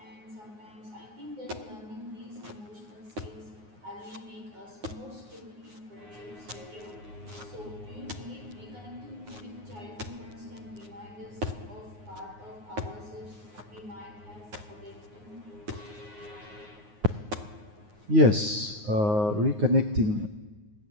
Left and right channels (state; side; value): late; left; 9.5 ms